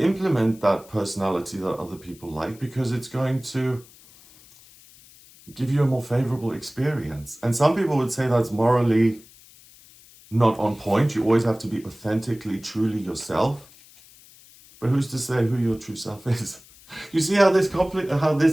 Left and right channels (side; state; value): left; noise; hiss, 24 dB below the sound